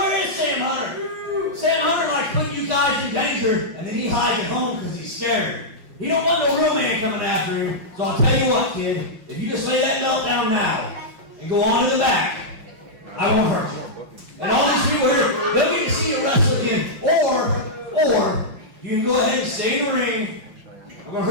is Sam Hunter? Sam Hunter likes putting you guys in danger, and then he hides at home because he's scared. He don't want no real man coming after him. So I'll tell you what, kid, if you just lay that belt down now and go on to the back, I won't hurt you. And all these people here, they'll get to see you wrestle again. Or you can go ahead and stay in the ring. I'm going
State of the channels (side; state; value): left; late; 5.5 ms